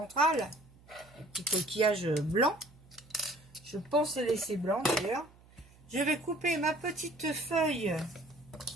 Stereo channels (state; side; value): noise; right; hum, 26 dB below the sound